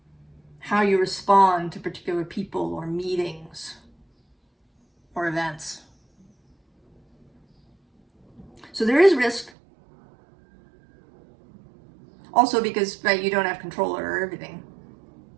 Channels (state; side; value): drops out; left; at 9.5 s